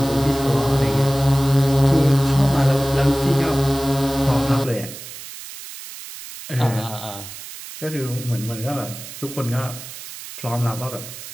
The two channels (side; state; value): right; noise; hiss, 13 dB below the sound